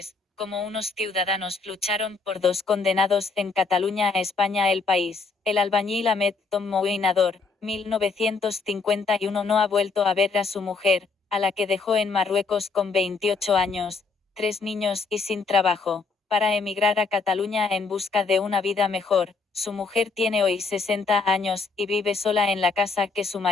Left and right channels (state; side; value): quieter; right; 4.5 dB